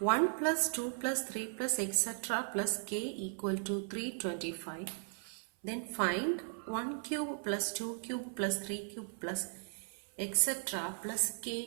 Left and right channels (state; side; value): silent; left; 53 dB below the other